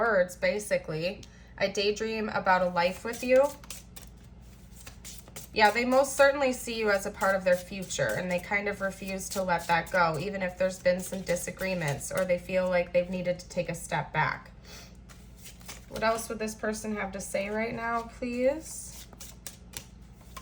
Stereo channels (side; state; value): both; identical; correlation 1.00